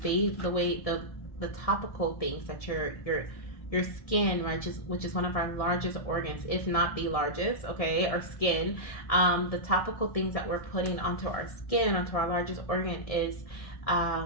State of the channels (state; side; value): late; right; 1.7 ms